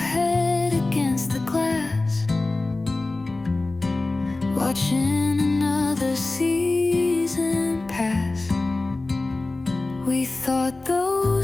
against the glass, watching another season pass. We thought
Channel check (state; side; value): quieter; right; 3.2 dB